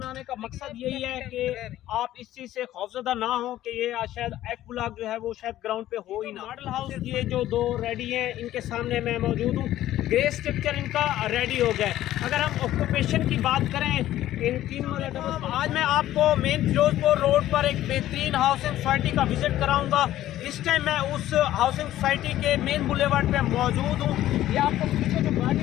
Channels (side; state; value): right; quieter; 13.6 dB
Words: का मकसद यही है कि आप इस चीज़ से खौफजदा ना हो कि ये शायद एफ ब्लॉक जो है वो शायद ग्राउंड पे हो ही ना। मॉडल हाउस ये जो दो रेडी हैं इनके सामने मैं मौजूद हूँ। ग्रे स्ट्रक्चर इनका रेडी हो गया है। अगर हम ऑक्यूपेशन की बात करें इन तीन आज मैं आपको मेन फिरोजपुर रोड पर एक बेहतरीन हाउसिंग सोसाइटी का विजिट कराऊंगा। इस टाइम मैं उस हाउसिंग सोसाइटी के मेन बुलेवार्ड पे मौजूद हूँ। ये आपको पीछे जो